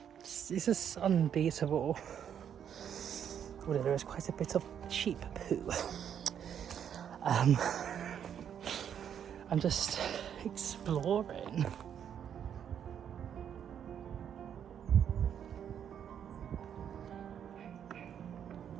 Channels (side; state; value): left; quieter; 8.8 dB